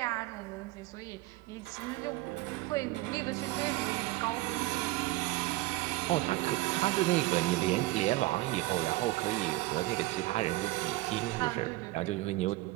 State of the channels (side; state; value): left; quieter; 19.2 dB